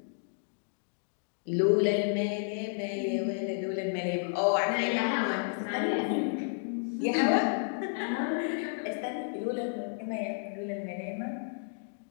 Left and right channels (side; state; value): right; silent; digital silence